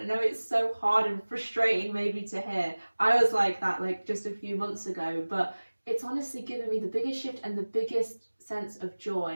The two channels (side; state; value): both; inverted; correlation -1.00